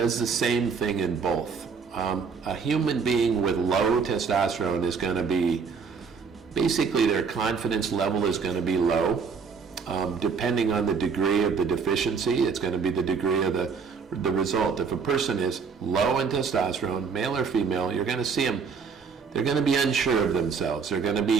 the same thing in both. A human being with low testosterone is going to be, basically their confidence level is going to be low. Depending on the degree of the deficiency, it's going to be the degree of the result. If a person is low in testosterone, male or female, you're going to see them, they're going to be unsure of themselves.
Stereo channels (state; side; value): quieter; left; 5.6 dB